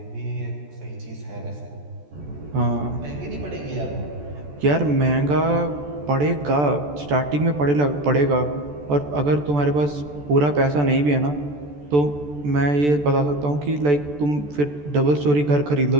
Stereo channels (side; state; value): left; late; 14 ms